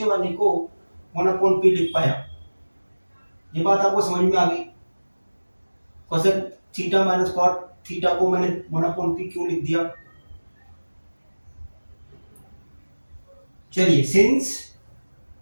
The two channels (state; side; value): inverted; both; correlation -1.00